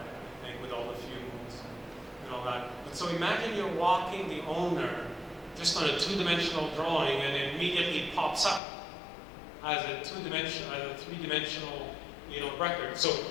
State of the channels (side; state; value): right; drops out; at 8.6 s